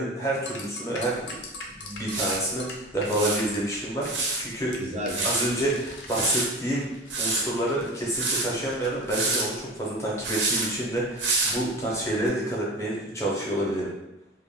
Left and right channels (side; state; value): both; normal; correlation 0.31